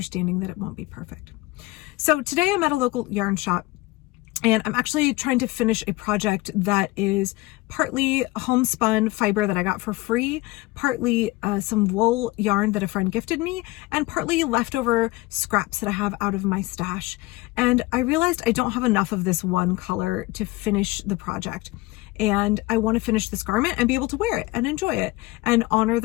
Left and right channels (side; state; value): right; quieter; 21.0 dB